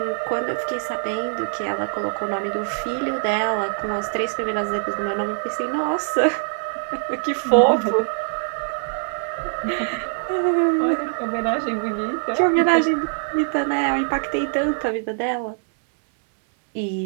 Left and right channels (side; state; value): left; silent; 63 dB below the other